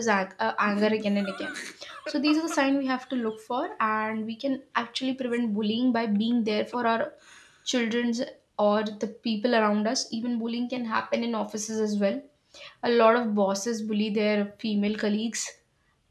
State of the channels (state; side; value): identical; both; correlation 1.00